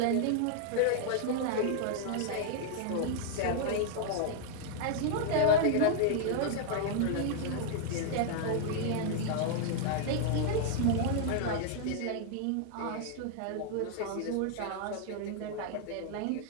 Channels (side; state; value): both; different; correlation -0.01